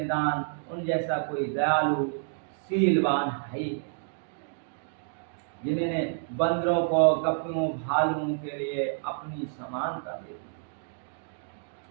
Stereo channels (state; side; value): silent; left; digital silence